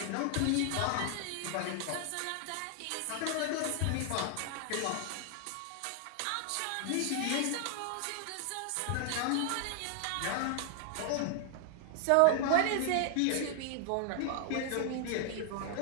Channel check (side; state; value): both; different; correlation 0.00